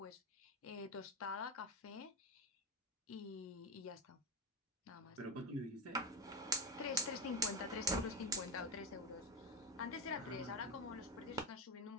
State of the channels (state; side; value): normal; both; correlation 0.16